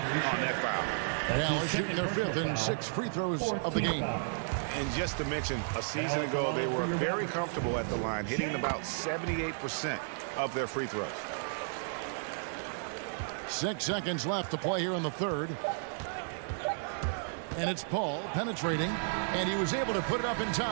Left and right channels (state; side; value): silent; left; digital silence